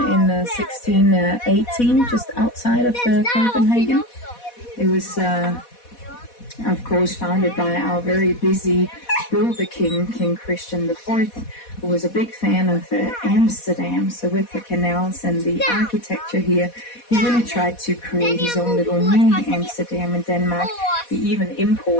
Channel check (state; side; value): late; right; 4.1 ms